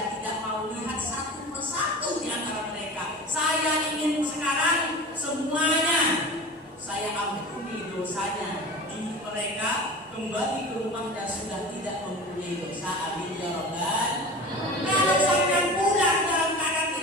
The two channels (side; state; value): both; normal; correlation 0.34